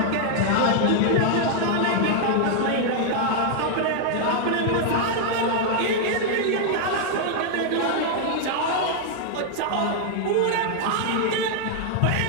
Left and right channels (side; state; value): both; different; correlation 0.00